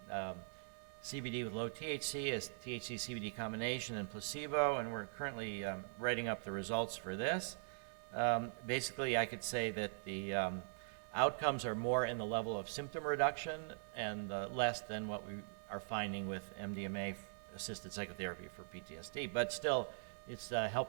CBD with low THC, as THC-CBD combination, and placebo, and we're currently writing up the results for this. Basically, I could say that the outcomes are more in the level of symptom reduction and less than what we are finding with MDMA-assisted psychotherapy for PTSD, but still, it's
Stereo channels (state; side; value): silent; left; digital silence